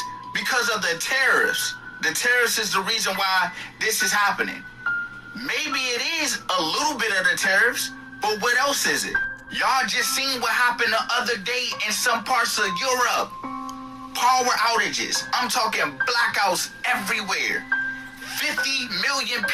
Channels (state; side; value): identical; both; correlation 1.00